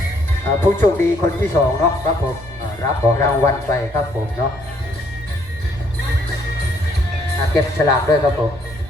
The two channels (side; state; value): right; noise; rumble, 19 dB below the sound